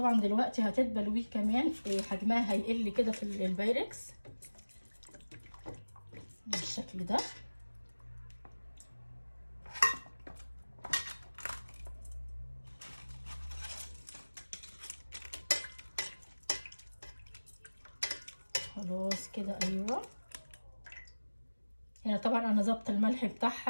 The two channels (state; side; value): inverted; both; correlation -1.00